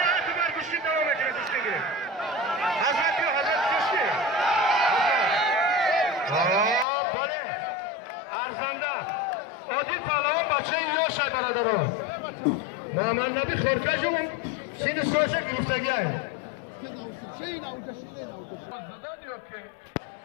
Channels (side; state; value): right; drops out; at 6.9 s